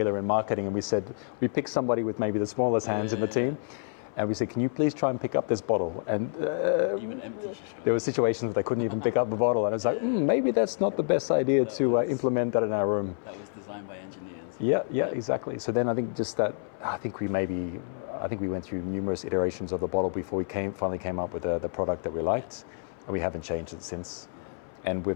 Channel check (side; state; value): right; silent; 59 dB below the other